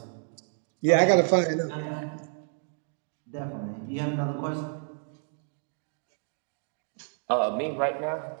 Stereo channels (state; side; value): silent; left; digital silence